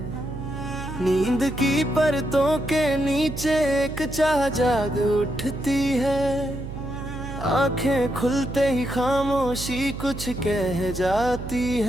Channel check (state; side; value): noise; right; hum, 9 dB below the sound